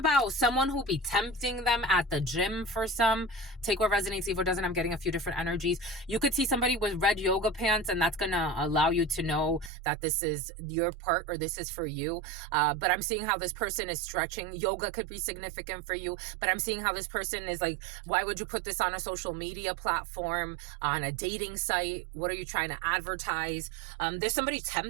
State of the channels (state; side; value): drops out; left; at 9.7 s